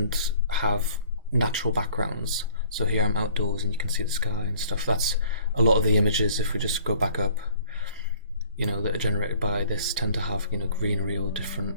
have natural backgrounds. So here I'm outdoors and you can see the sky and stuff. That's a lot of the images, if we just go back up, that are generated by this tend to have, greenery or different.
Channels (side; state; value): both; inverted; correlation -0.56